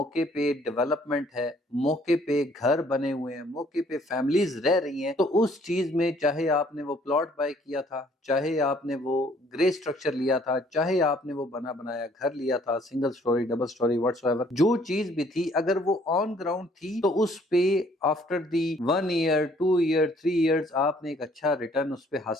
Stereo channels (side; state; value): both; normal; correlation 0.61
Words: पे डेवलपमेंट है, मौके पे घर बने हुए हैं, मौके पे फैमिलीज रह रही हैं, तो उस चीज में चाहे आपने वो प्लॉट बाय किया था, चाहे आपने वो ग्रे स्ट्रक्चर लिया था, चाहे आपने वो बना बनाया घर लिया था, single storey, double storey, whatsoever, जो चीज भी थी, अगर वो ऑन ग्राउंड थी तो उस पे after the 1 year, 2 year, 3 years आपने एक अच्छा रिटर्न उस पे